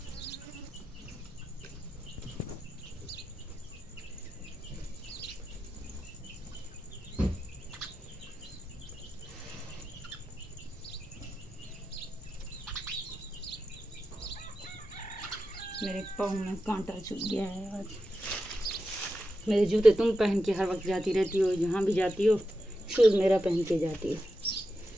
मेरे पाँव में कांटा चुभ गया है आज। मेरे जूते तुम पहन के हर वक्त जाती रहती हो, जहाँ भी जाती हो शूज़ मेरा पहन के जाती हो,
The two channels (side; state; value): both; normal; correlation 0.89